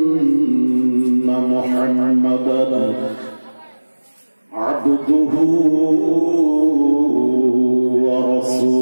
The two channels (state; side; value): inverted; both; correlation -1.00